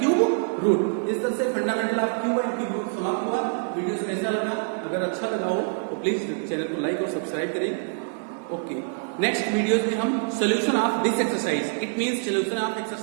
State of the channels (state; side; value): silent; left; digital silence